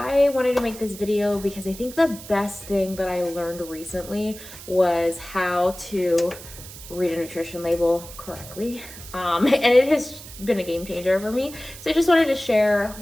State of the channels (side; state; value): right; noise; hiss, 15 dB below the sound